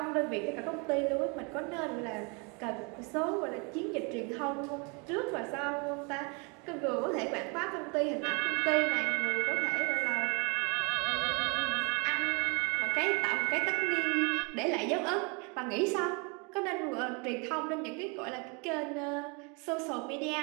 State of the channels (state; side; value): quieter; left; 32.2 dB